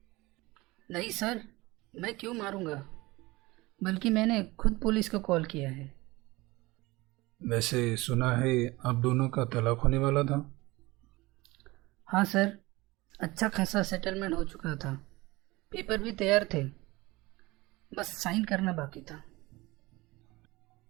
नहीं सर, मैं क्यों मारूंगा, बल्कि मैंने खुद पुलिस को कॉल किया है। वैसे सुना है आप दोनों का तलाक होने वाला था। हाँ सर, अच्छा खासा सेटलमेंट हो चुका था। पेपर भी तैयार थे, बस साइन करना बाकी था।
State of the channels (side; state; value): left; quieter; 21.3 dB